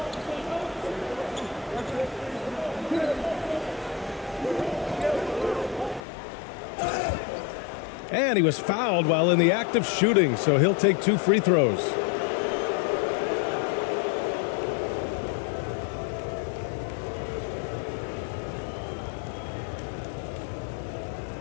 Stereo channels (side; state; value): right; drops out; at 6.0 s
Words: And he was fouled while in the act of shooting, so he'll take 2 free throws.